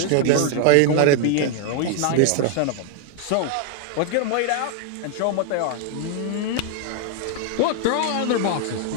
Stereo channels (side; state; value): both; different; correlation 0.00